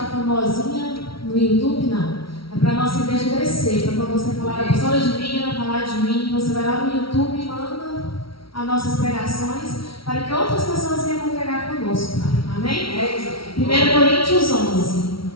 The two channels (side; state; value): right; late; 0.75 ms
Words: famosinha no YouTube, não. É para a nossa igreja crescer. Para quando você falar a pessoa de mim, ela falar de mim, você vai lá no YouTube e manda as nossas pregações para que outras pessoas venham congregar conosco. Amém? 1 Coríntios 11.